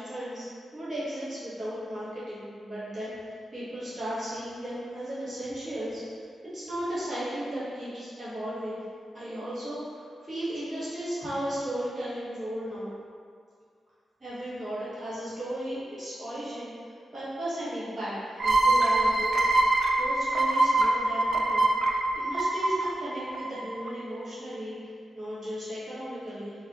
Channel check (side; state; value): both; normal; correlation 0.90